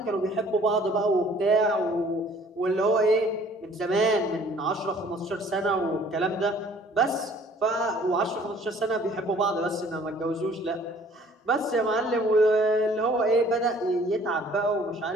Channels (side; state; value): both; normal; correlation 0.55